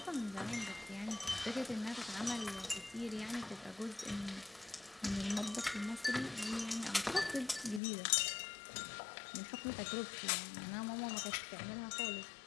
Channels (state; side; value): drops out; right; at 7.8 s